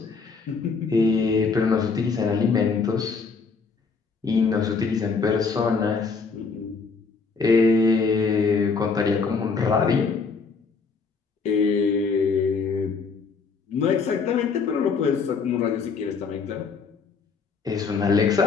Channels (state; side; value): quieter; right; 4.9 dB